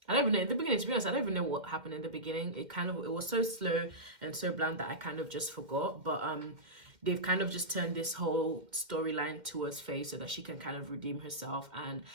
don't even know in the beginning, to be honest, I don't even know what happened in the beginning. It was so slow and so bland that I kind of just forgot. But they've kind of just turned this whole storyline towards Faye so that she can kind of redeem herself. And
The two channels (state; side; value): late; left; 2.1 ms